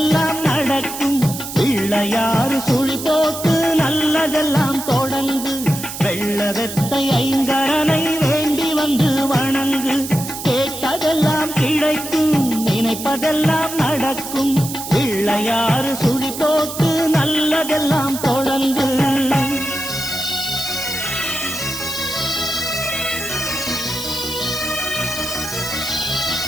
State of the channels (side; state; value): right; noise; hiss, 8 dB below the sound